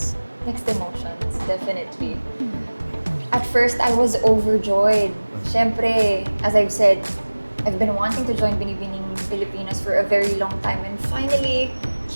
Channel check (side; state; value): both; inverted; correlation -1.00